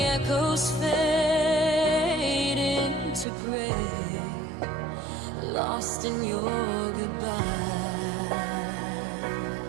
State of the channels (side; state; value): left; drops out; at 3.2 s